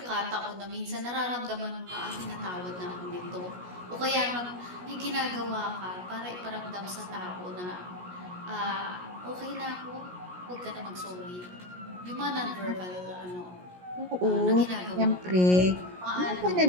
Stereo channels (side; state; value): left; late; 17 ms